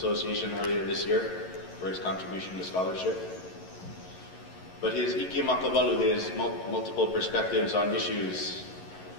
earlier this year for his contribution to scholarship. But his Ike Makabalu, his multiple perspectives on issues,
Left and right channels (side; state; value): right; late; 11 ms